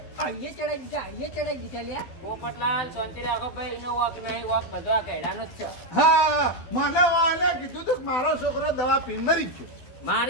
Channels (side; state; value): right; late; 12 ms